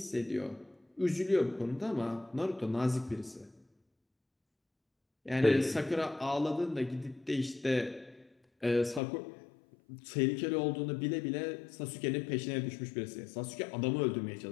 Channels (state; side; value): drops out; right; at 9.0 s